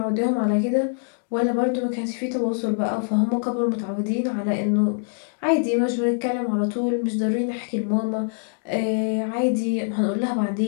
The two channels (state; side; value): silent; right; digital silence